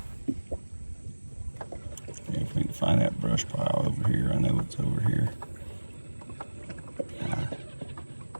If we can find that brush pile over here, I know it's over here.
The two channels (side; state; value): both; inverted; correlation -1.00